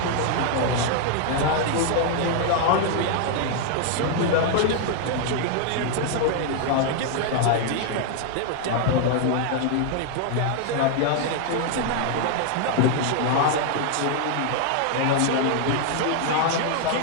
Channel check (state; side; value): different; both; correlation 0.00